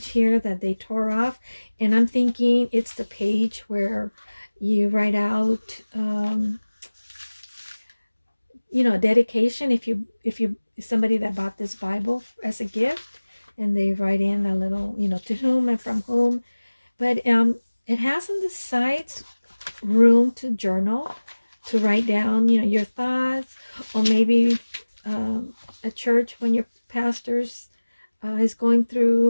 here that they tore off, and I'm thinking it's the page where you write out you know, dedication if somebody that bought this Bible as a gift, and they write in a little, you know, to whom and from whom. But it has on the sides room to journal, to write down, you know, your thoughts, or maybe at church when your pastor's is going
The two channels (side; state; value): both; inverted; correlation -1.00